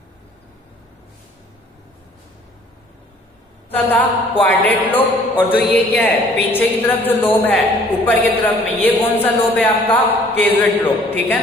था क्वाड्रेट लोब, और जो ये क्या है, पीछे की तरफ जो लोब है ऊपर की तरफ में, ये कौन सा लोब है आपका, केजुएट लोब, ठीक है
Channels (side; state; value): both; normal; correlation 0.56